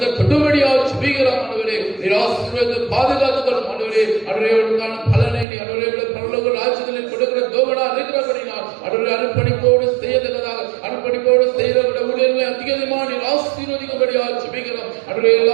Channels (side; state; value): left; drops out; at 5.5 s